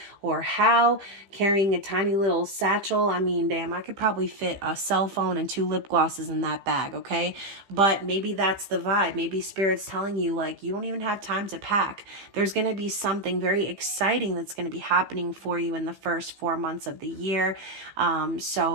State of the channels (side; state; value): left; late; 15 ms